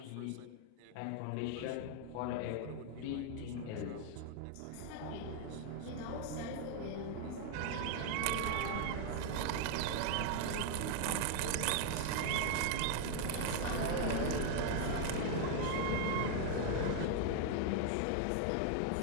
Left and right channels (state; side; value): different; both; correlation 0.00